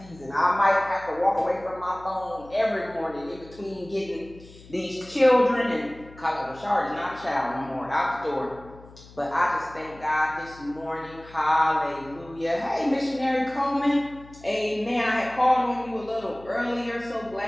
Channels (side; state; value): left; noise; hum, 21 dB below the sound